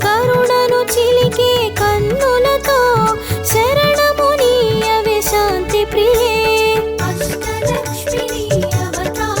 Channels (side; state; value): both; identical; correlation 1.00